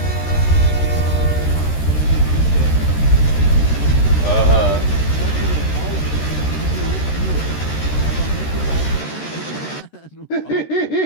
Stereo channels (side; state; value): right; late; 13 ms